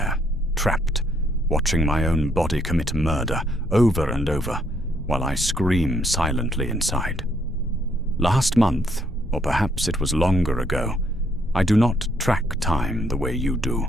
trapped, watching my own body commit murder over and over, while I scream silently inside. Last month, or perhaps it was longer ago, I do not track time the way you do.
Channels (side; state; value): both; normal; correlation 0.70